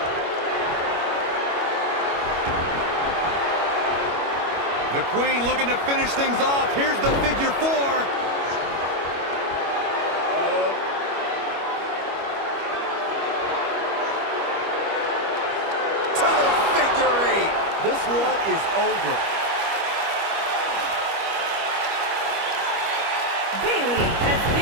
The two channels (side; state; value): left; late; 25 ms